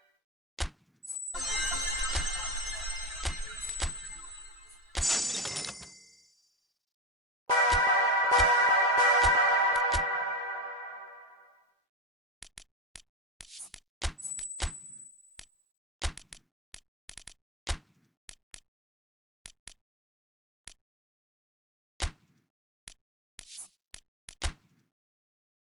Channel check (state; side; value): normal; both; correlation 0.15